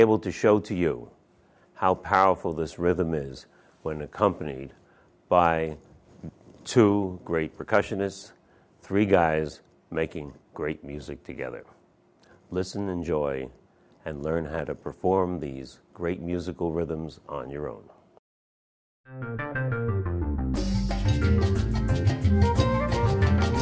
to show to you how powerful this rhythm is when accompanied by two great percussionists, three guys making great music together. Listen, enjoy, and learn how to perform these great musical rhythms on your own.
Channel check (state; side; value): identical; both; correlation 1.00